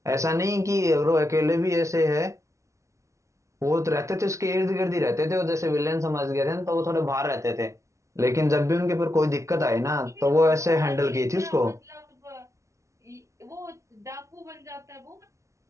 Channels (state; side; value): late; left; 0.14 ms